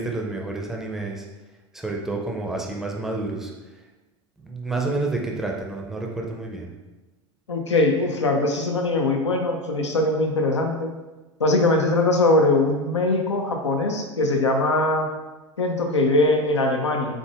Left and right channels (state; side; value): normal; both; correlation 0.20